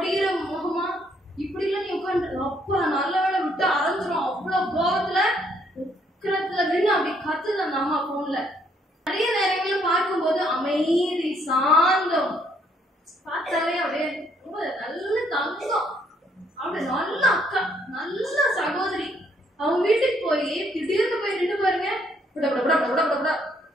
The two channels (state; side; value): normal; both; correlation 0.69